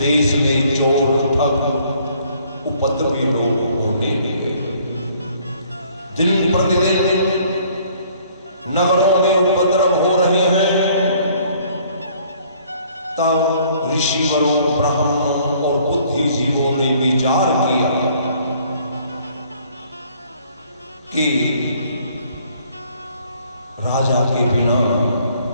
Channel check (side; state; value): both; inverted; correlation -0.60